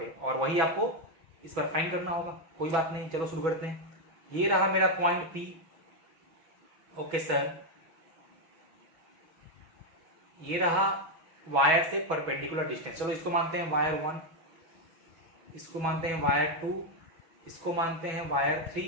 और वही आपको इस बार फाइंड करना होगा। कोई बात नहीं, चलो शुरू करते हैं। ये रहा मेरा पॉइंट P। ओके सर, ये रहा वायर से परपेंडिकुलर डिस्टेंस। चलो इसको मानते हैं वायर 1, इसको मानते हैं वायर 2, इसको मानते हैं वायर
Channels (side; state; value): left; late; 6.2 ms